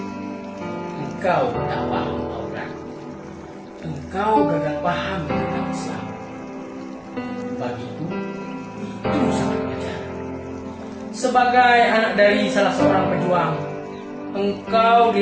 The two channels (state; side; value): identical; both; correlation 1.00